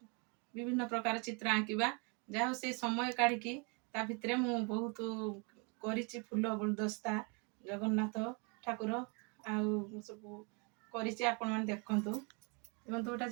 विभिन्न प्रकार चित्र आंकिबा जहाँ से समय काढ़ी ता भितर मु बहुत करिछि फूल गुलदस्ता जगन्नाथ ठाकुर आउ सब करिछि आपण माने देखंतु देखंतु गोटा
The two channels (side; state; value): left; quieter; 32.9 dB